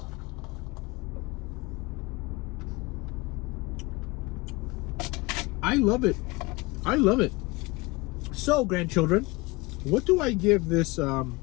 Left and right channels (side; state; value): right; quieter; 23.9 dB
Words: I love it. I love it. So, grandchildren, what do I give this